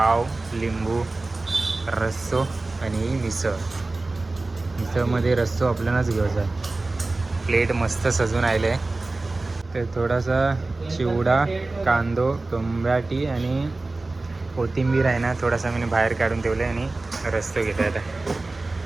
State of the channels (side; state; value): left; quieter; 3.2 dB